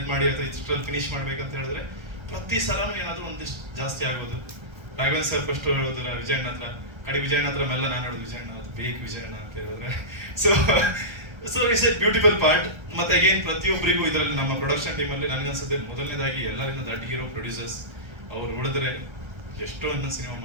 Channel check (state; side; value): late; left; 1.3 ms